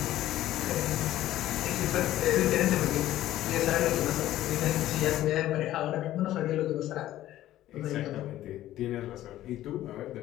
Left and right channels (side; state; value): right; quieter; 14.0 dB